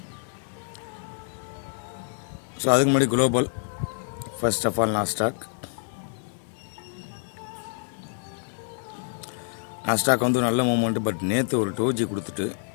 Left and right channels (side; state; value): right; silent; digital silence